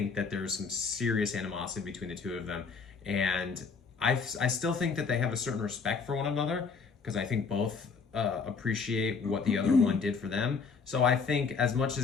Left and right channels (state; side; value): quieter; right; 5.2 dB